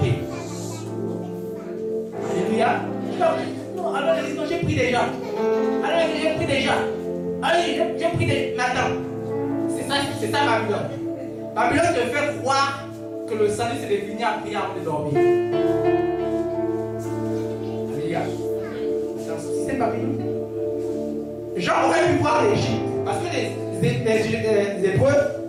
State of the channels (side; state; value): both; identical; correlation 1.00